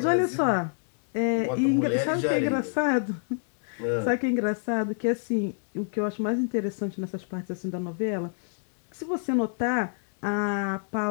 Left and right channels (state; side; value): silent; right; digital silence